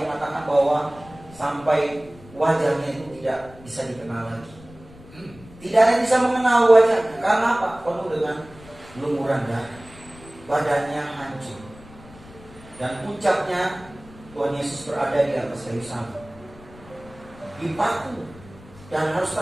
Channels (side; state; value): left; noise; rumble, 21 dB below the sound